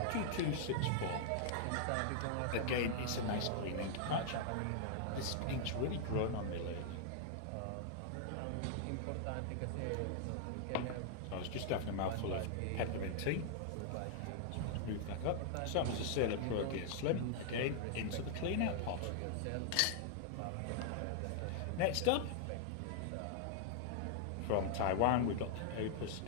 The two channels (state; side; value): different; both; correlation -0.01